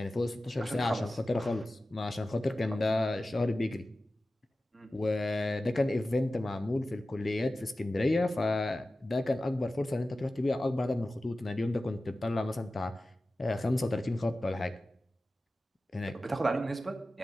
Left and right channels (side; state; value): both; normal; correlation 0.95